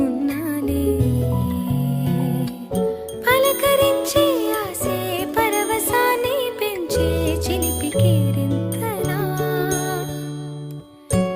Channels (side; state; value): both; identical; correlation 1.00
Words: ఉన్నాలే. పలకరించే ఆసే పరవశాన్ని పెంచే చిలిపి కేరింతలా